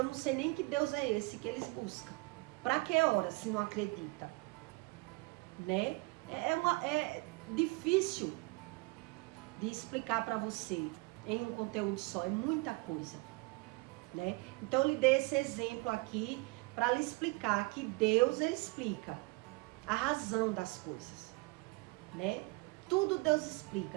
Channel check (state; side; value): quieter; left; 25.7 dB